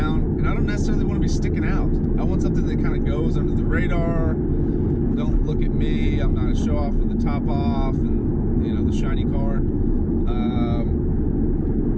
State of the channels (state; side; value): identical; both; correlation 1.00